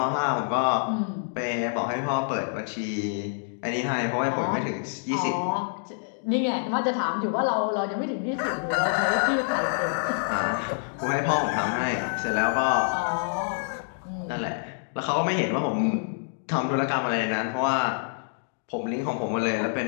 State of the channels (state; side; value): silent; right; digital silence